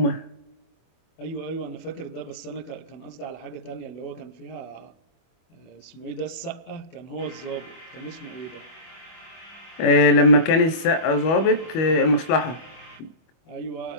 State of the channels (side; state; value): right; late; 25 ms